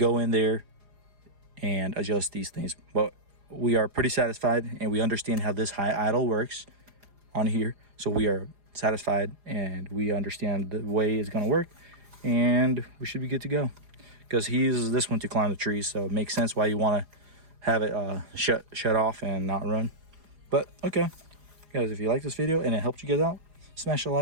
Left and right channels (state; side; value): late; left; 4.9 ms